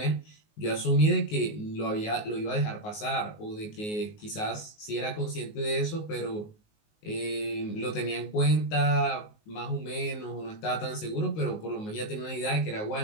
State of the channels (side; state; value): right; late; 19 ms